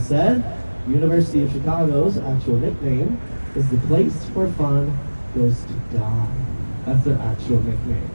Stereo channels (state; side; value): inverted; both; correlation -1.00